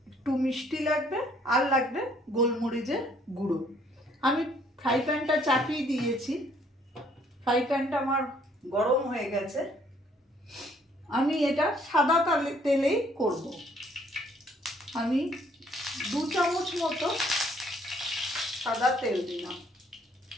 একটু মিষ্টি লাগবে, আর লাগবে গোলমরিচের গুঁড়ো। আমি ফ্রাই প্যানটা চাপিয়ে দিয়েছি, ফ্রাই প্যানটা আমার গরম হয়ে গেছে। আমি এটা সাদা তেলেই করব। আমি 2 চামচ মতো সাদা তেল দিলাম,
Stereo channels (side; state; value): both; normal; correlation 0.63